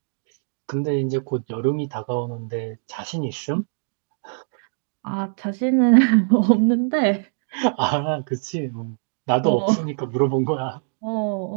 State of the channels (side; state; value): left; silent; digital silence